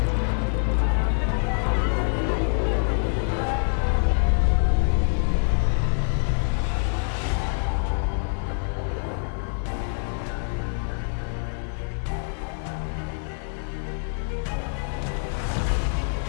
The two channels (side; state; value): right; silent; digital silence